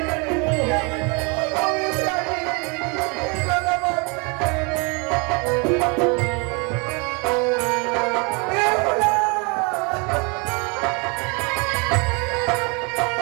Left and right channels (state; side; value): quieter; left; 31.8 dB